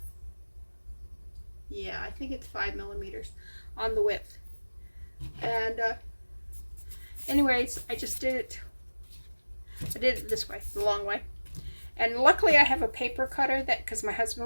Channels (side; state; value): both; inverted; correlation -1.00